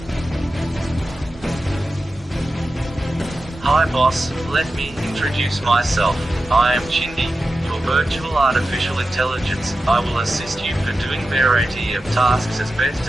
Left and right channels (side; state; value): both; normal; correlation 0.92